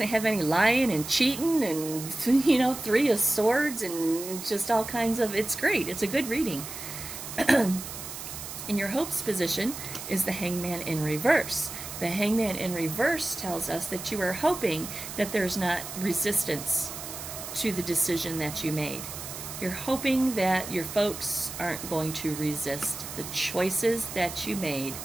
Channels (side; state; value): right; noise; hiss, 9 dB below the sound